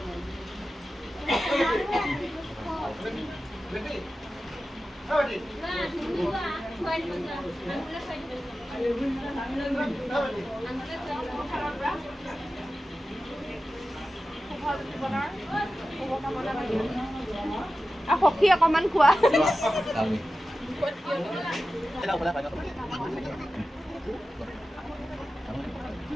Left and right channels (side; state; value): both; normal; correlation 0.94